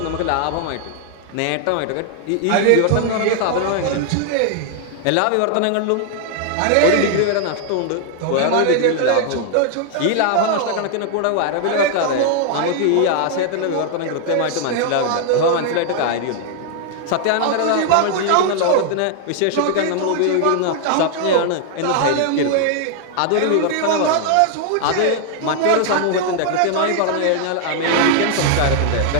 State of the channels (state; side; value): different; both; correlation 0.00